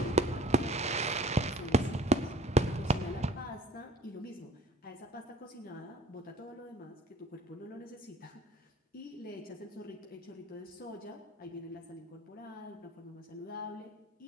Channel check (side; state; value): both; normal; correlation 0.49